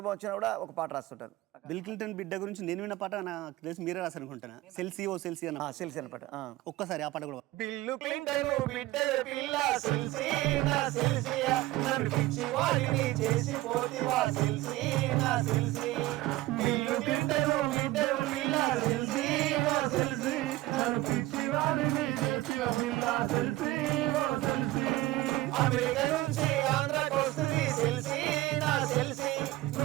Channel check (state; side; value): quieter; left; 17.4 dB